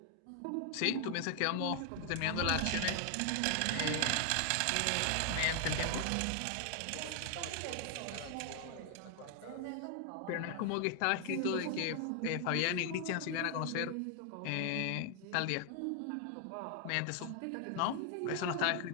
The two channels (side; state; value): both; different; correlation 0.00